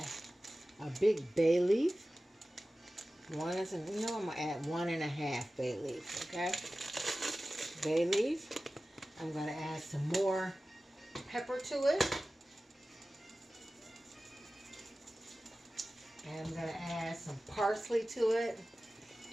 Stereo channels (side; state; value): both; normal; correlation 0.96